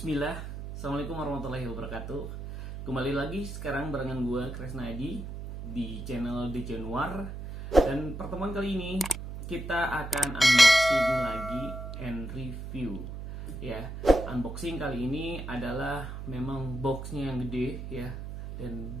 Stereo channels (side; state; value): right; noise; hum, 8 dB below the sound